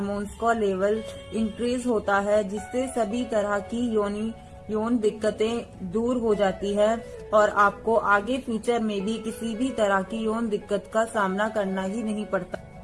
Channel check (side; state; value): both; identical; correlation 1.00